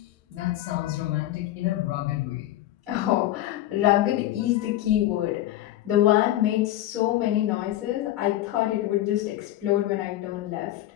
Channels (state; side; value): quieter; right; 14.3 dB